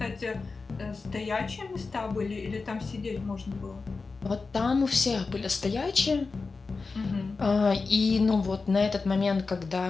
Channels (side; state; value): right; quieter; 4.2 dB